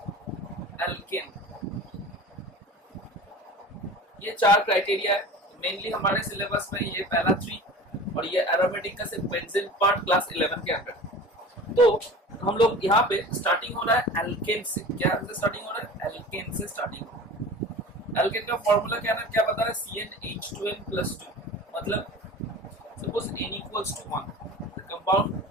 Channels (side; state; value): both; normal; correlation 0.38